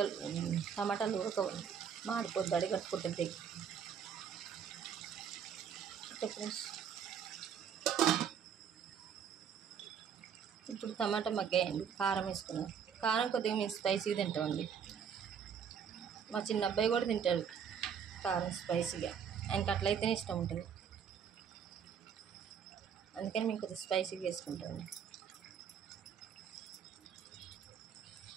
టమాటాలు ఉడకవండి, మాడిపోద్ది, అడిగట్టుకుంటుంది. ఇప్పుడు టమాటా మగ్గాయండి. కారం వేసుకున్నాం. కారం కొద్దిగా మేము స్పైసీగా తింటామండి. మా చిన్న అబ్బాయి కూడా తింటాడు కారం స్పైసీగా. ఆయనకి అట్లయితేనే ఇష్టం ఉంటుంది. అందుకని మేము కొద్దిగా స్పైసీగా వేసుకుంటామండి.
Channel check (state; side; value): quieter; left; 7.6 dB